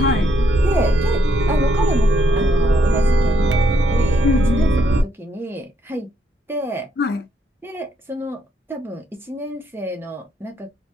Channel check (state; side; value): normal; both; correlation 0.73